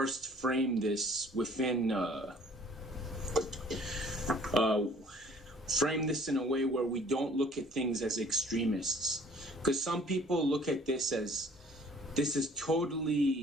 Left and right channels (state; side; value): normal; both; correlation 0.54